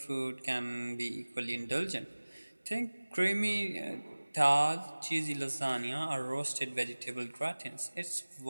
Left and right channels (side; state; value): both; inverted; correlation -1.00